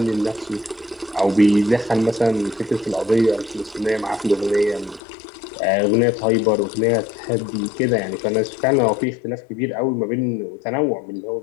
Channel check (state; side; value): drops out; right; at 5.0 s